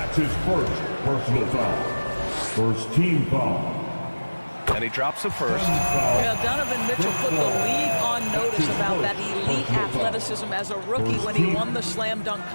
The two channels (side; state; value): both; inverted; correlation -1.00